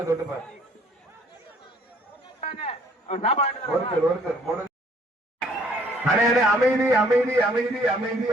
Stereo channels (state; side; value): normal; both; correlation 0.60